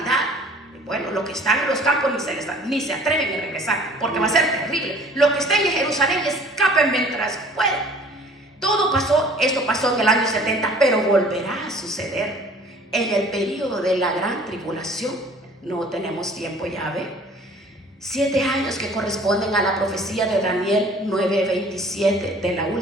Bueno, los que están en los campos ni se atreven a regresar, porque va a ser terrible. Los que estén en Jerusalén escapen mientras puedan. Esto pasó en el año 70, pero volverá a suceder en el periodo de la gran tribulación. No tenemos tiempo, ya ve. 7 años que corresponden a la profecía de Daniel 9:27 de la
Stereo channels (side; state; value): both; normal; correlation 0.51